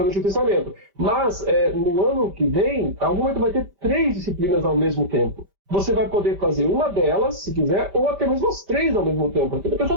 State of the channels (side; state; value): left; late; 5.1 ms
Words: no Antigo Testamento. Mas, no ano que vem, algum momento vai ter 3 disciplinas ao mesmo tempo. Você vai poder fazer uma delas, se quiser, ou até mesmo as 3 ao mesmo tempo. Porque a